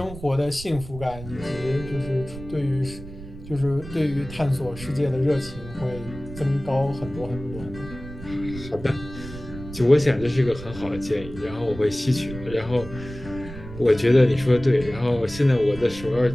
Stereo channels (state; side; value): noise; right; rumble, 13 dB below the sound